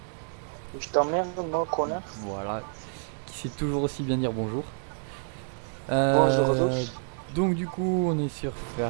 Je t'emmerde, moi, connard. Voilà, qui sait toujours aussi bien dire bonjour. Bonjour à Euh, tous. donc du coup on est sur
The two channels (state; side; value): silent; left; digital silence